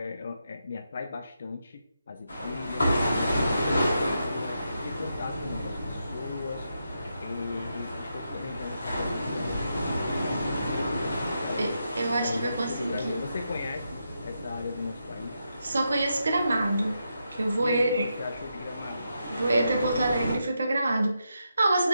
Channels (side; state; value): both; inverted; correlation -0.84